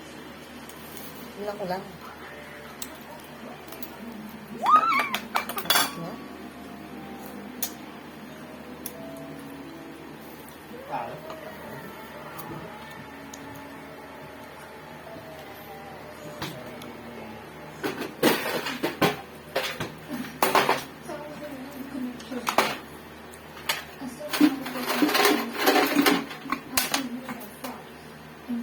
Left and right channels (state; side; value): identical; both; correlation 1.00